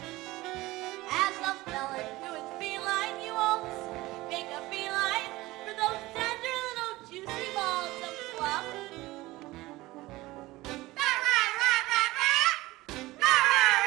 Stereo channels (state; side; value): quieter; left; 19.1 dB